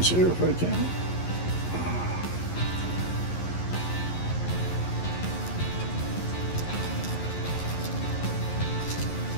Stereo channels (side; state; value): right; late; 11 ms